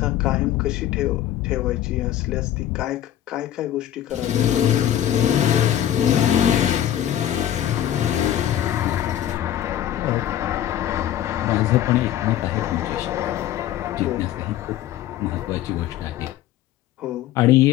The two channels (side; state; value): right; quieter; 11.7 dB